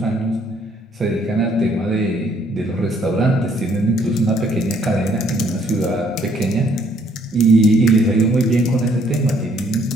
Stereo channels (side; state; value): both; normal; correlation 0.65